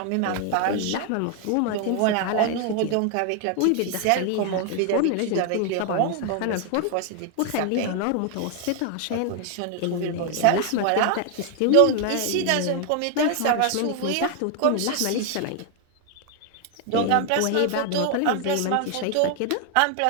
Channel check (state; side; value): different; both; correlation 0.00